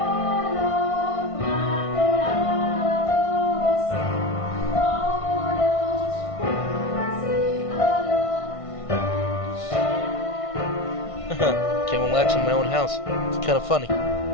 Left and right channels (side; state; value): right; late; 1.5 ms